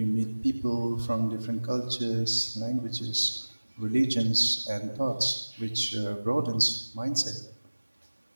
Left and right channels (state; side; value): inverted; both; correlation -1.00